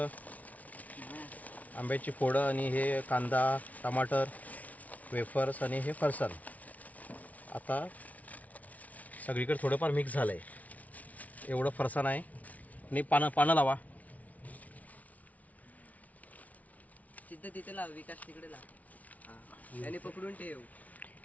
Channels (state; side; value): late; right; 0.071 ms